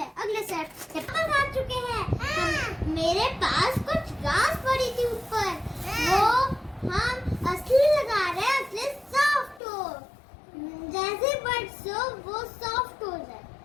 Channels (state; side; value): drops out; right; at 9.6 s